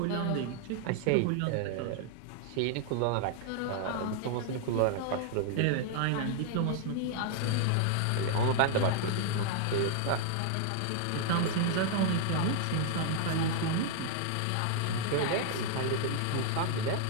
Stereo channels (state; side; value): different; both; correlation 0.00